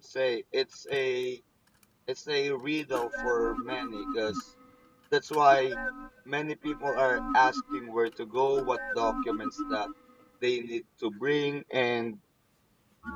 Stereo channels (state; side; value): identical; both; correlation 1.00